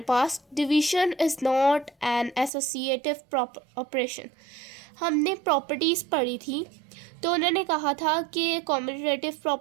पास, division is not an associative operation. हमने प्रॉपर्टीज़ पढ़ी थी, तो उन्होंने कहा था कि commutative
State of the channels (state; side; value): drops out; left; at 2.5 s